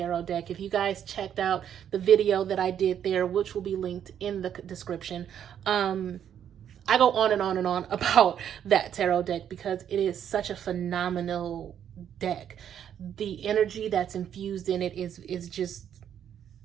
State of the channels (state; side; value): quieter; left; 9.3 dB